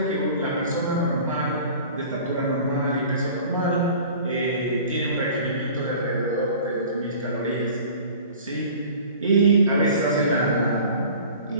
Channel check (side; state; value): both; inverted; correlation -0.44